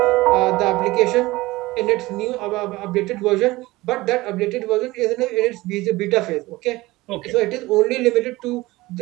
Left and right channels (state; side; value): quieter; left; 19.7 dB